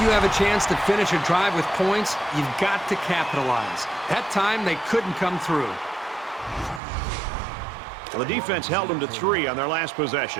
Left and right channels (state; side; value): drops out; left; at 6.8 s